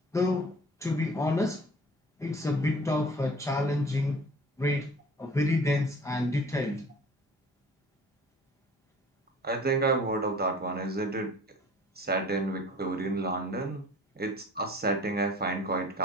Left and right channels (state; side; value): normal; both; correlation 0.47